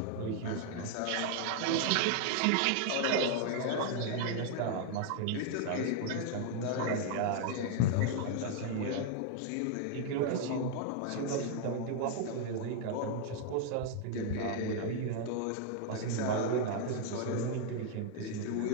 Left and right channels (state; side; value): different; both; correlation 0.00